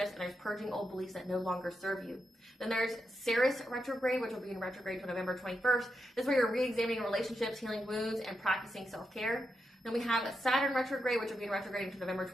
and there's purging old beliefs that no longer serve you. Then there's Ceres retrograde, which will be in retrograde until November 21st. This is where you're re-examining relationships, healing wounds, and practicing self-care. Then we have Saturn retrograde, which will be in retrograde until November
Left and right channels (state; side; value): normal; both; correlation 0.85